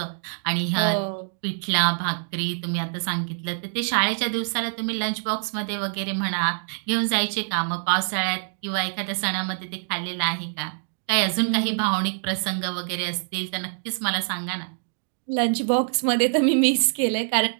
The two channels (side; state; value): left; silent; digital silence